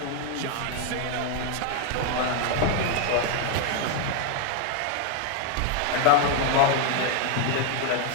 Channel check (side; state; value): both; different; correlation 0.01